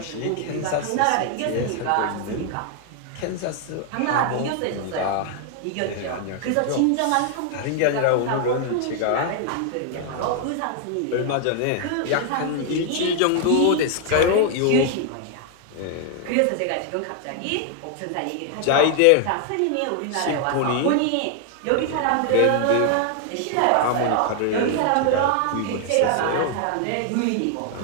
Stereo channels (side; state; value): both; different; correlation 0.00